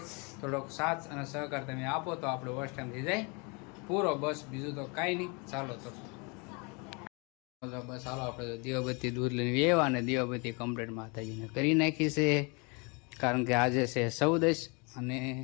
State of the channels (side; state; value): right; quieter; 31.2 dB